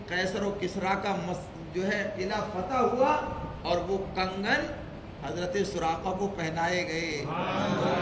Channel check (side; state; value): both; identical; correlation 1.00